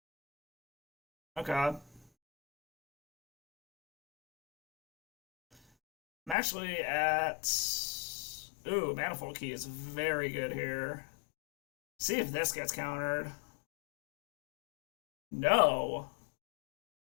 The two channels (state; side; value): drops out; right; at 6.4 s